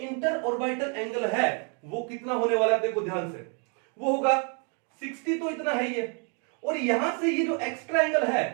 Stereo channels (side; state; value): left; quieter; 39.2 dB